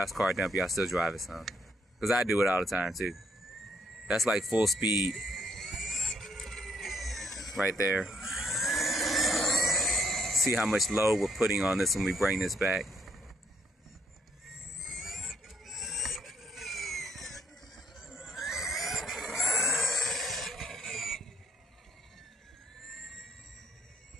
car dump, y'all still drive it some. Because I do it all the time too. That's like full speed. Right there. See how much load we're putting on this when we bring this back.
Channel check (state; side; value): normal; both; correlation 0.71